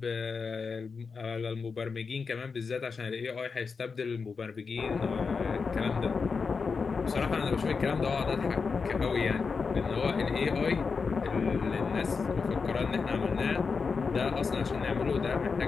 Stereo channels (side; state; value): right; quieter; 5.1 dB